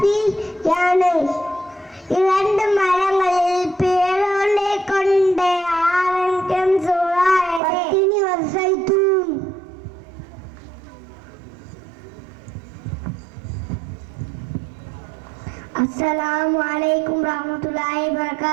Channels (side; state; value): left; drops out; at 7.6 s